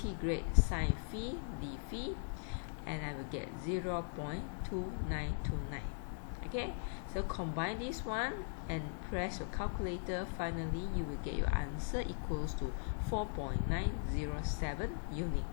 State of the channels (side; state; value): right; silent; digital silence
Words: sine phi d phi, and I will get 0.2929. Okay, so combine this one and press your calculator. Finally, you will get your answer equals to 4.907 unit